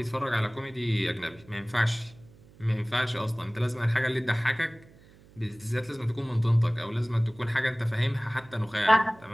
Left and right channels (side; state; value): right; noise; hum, 25 dB below the sound